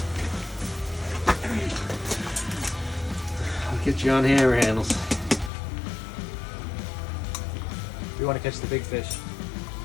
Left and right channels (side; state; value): right; drops out; at 5.5 s